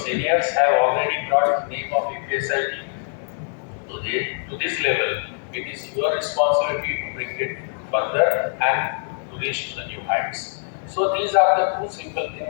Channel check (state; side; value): silent; right; 63 dB below the other